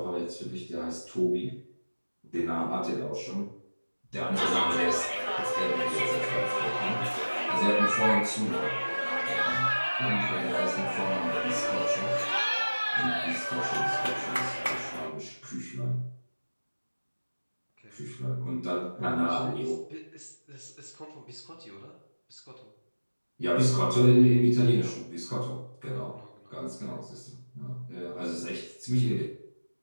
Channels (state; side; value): inverted; both; correlation -1.00